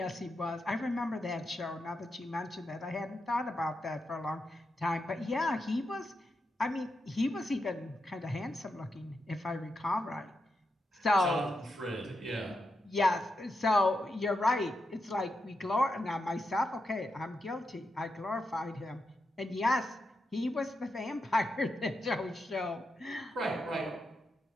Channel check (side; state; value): both; normal; correlation 0.86